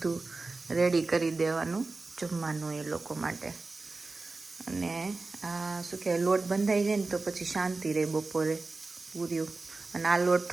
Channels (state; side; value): quieter; left; 3.7 dB